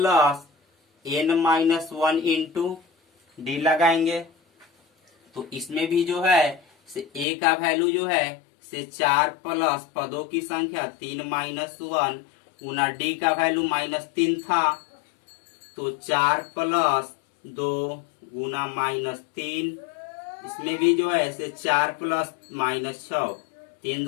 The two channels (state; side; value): drops out; right; at 7.2 s